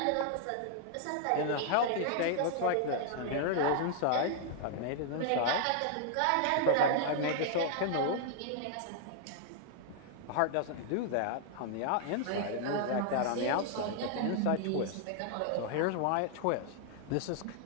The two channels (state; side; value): different; both; correlation -0.01